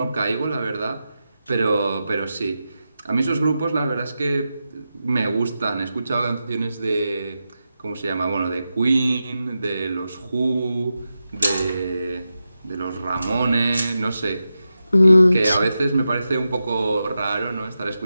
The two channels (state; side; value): inverted; both; correlation -0.90